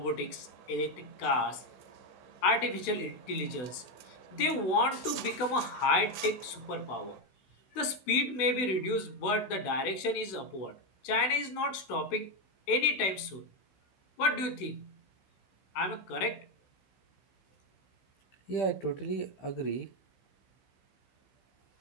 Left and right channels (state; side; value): late; right; 16 ms